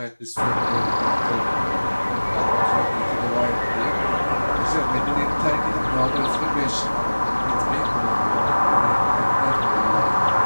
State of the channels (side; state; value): both; inverted; correlation -1.00